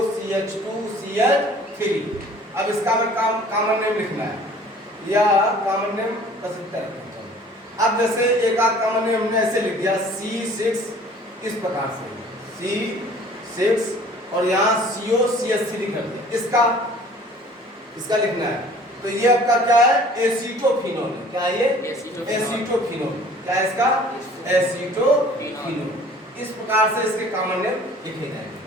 CH2 CH3। अब इसका हमें कॉमन नेम लिखना है, या कॉमन नेम कर सकते हैं। अब जैसे एक आध कॉमन नेम हमने ऐसे लिख दिया C6, इस प्रकार से C6, और यहाँ CO CH3 कर दिया, इसका लिखना है। तो ये आपका क्या है, एसीटोफिनोल। क्या है ये, एसीटोफिनोल। क्या है इसका, एसीटोफिनोल। इस प्रकार से इसके कॉमन नेम लिखे जाएंगे।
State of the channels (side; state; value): both; normal; correlation 0.50